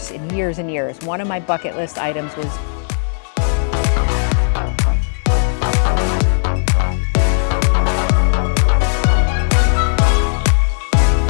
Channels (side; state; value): right; silent; digital silence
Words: and years and years, one of my bucket list items was